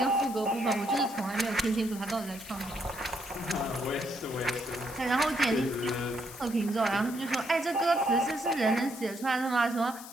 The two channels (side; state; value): left; noise; hiss, 15 dB below the sound